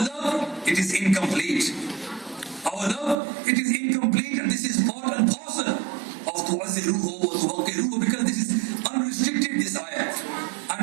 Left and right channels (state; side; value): drops out; left; at 3.2 s